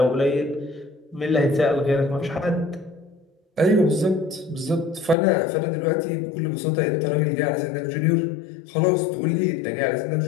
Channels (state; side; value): drops out; right; at 5.2 s